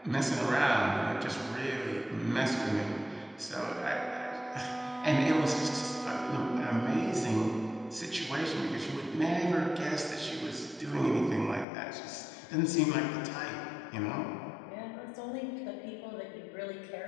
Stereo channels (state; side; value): drops out; right; at 11.7 s